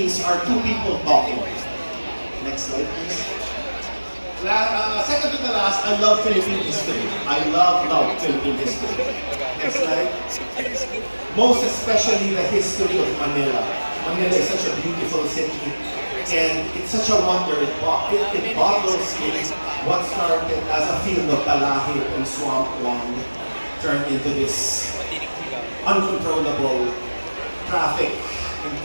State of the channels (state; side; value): inverted; both; correlation -1.00